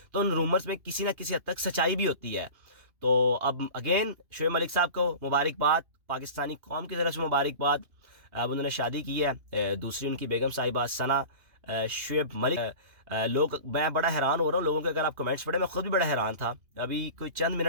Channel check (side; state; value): left; late; 2.8 ms